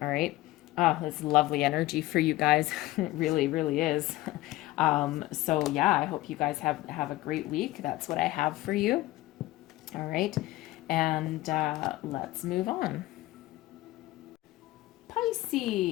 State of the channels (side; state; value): right; quieter; 17.5 dB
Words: All right. It's lovely energy for you guys. It really, really is. So yeah, I hope you guys have a great week. That's what I have for you. All right. And let's move on.